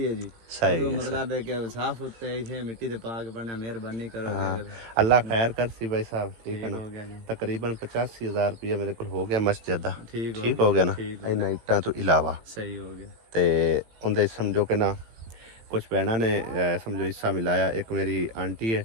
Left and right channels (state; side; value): late; left; 18 ms